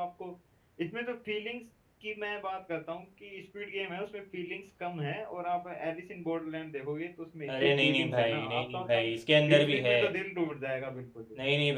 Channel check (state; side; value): identical; both; correlation 1.00